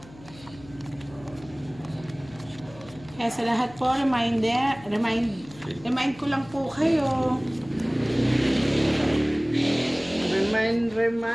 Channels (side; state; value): left; noise; hum, 21 dB below the sound